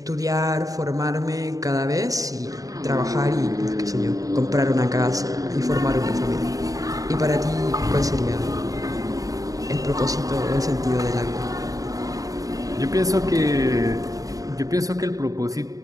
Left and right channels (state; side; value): late; left; 0.17 ms